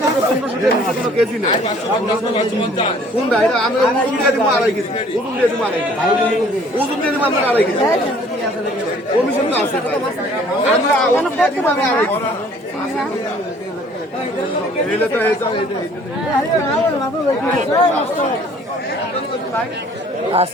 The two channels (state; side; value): normal; both; correlation 0.55